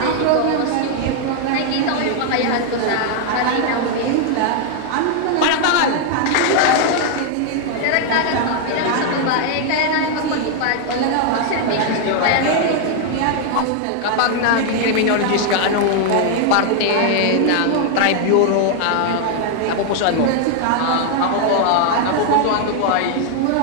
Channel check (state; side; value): different; both; correlation 0.00